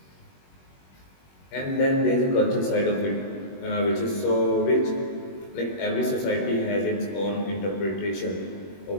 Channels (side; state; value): right; late; 21 ms